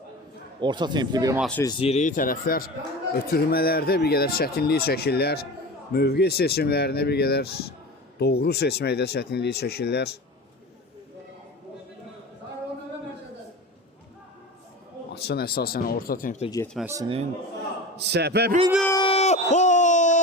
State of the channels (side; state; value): both; normal; correlation 0.31